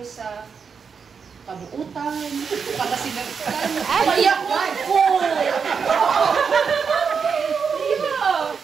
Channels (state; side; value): quieter; left; 6.0 dB